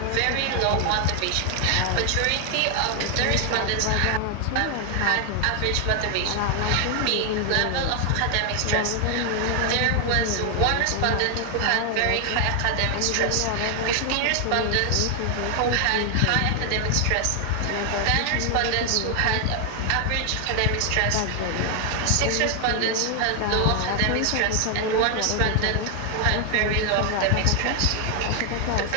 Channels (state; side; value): different; both; correlation 0.00